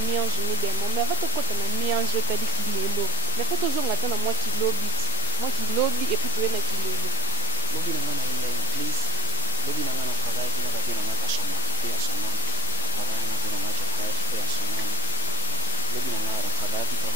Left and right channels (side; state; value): both; inverted; correlation -0.35